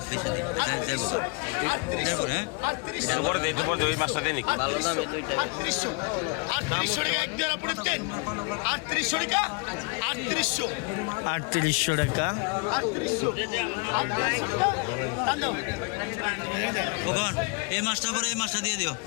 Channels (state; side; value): quieter; right; 33.1 dB